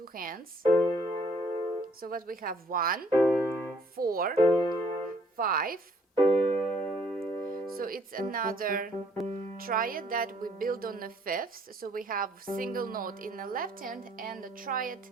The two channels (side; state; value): both; normal; correlation 0.63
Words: hands. So what we have 1 4 5. So it's another triad that we build on the 5th. So we have single note in the left hand and a triad